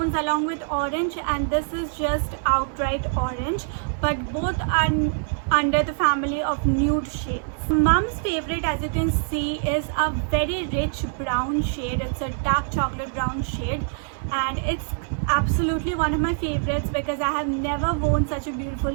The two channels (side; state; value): left; silent; 59 dB below the other